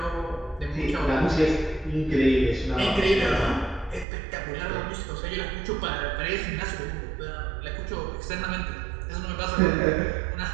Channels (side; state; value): left; drops out; at 4.0 s